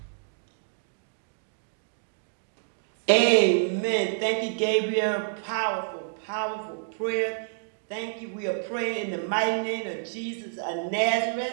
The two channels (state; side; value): silent; left; digital silence